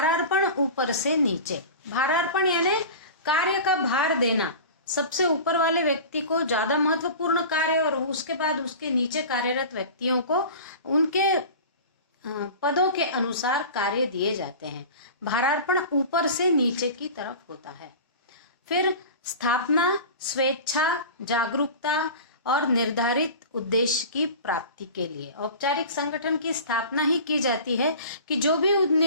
ऊपर से नीचे। भारार्पण यानी कार्य का भार देना, सबसे ऊपर वाले व्यक्ति को ज्यादा महत्वपूर्ण कार्य और उसके बाद उसके नीचे कार्यरत व्यक्तियों को उनके पदों के अनुसार कार्य दिए जाते हैं। भारार्पण ऊपर से नीचे की तरफ होता है। फिर स्थापना, स्वेच्छा, जागरूकता और निर्धारित उद्देश्य की प्राप्ति के लिए औपचारिक संगठन की स्थापना ही की जाती है कि जो भी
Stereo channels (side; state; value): both; inverted; correlation -0.35